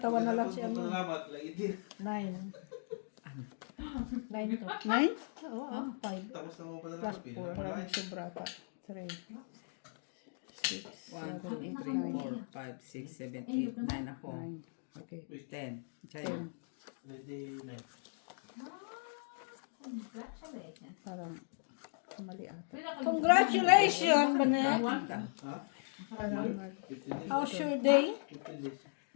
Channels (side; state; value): right; silent; digital silence